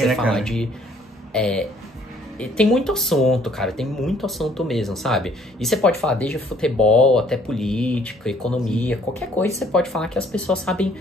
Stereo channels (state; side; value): normal; both; correlation 0.61